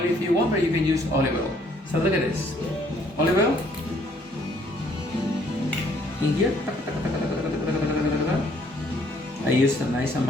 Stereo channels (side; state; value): both; normal; correlation 0.64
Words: if you want, but you can use olive oil. So look at this. Olive oil in here. I use a nice